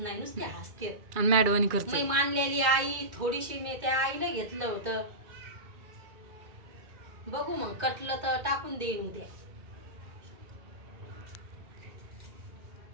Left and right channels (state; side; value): late; left; 2.3 ms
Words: नुसते हसते. आणि मॅडवानी करते. मी मानलेली आई थोडीशी मी त्या आईला घेतलं होतं. बघू मग कटलं तर टाकून देईन उद्या